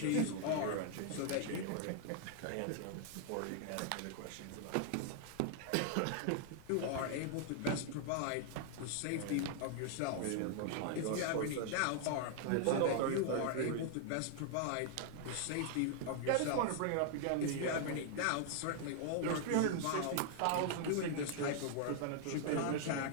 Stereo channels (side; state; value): both; different; correlation 0.00